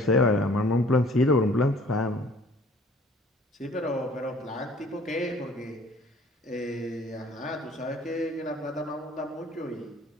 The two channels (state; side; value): normal; both; correlation 0.53